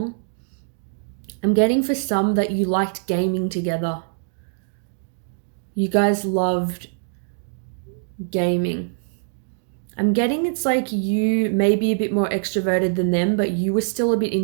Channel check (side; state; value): left; silent; 63 dB below the other